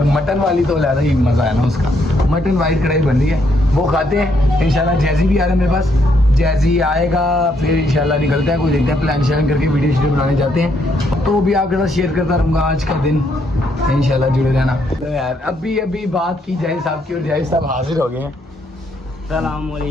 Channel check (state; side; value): normal; both; correlation 0.73